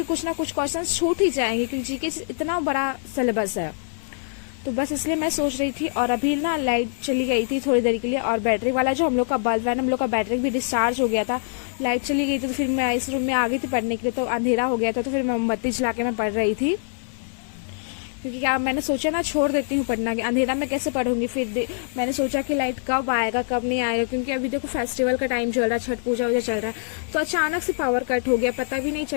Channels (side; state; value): right; silent; 60 dB below the other